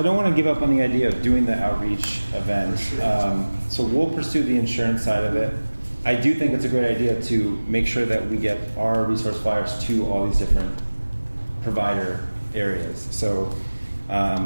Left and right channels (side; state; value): both; inverted; correlation -1.00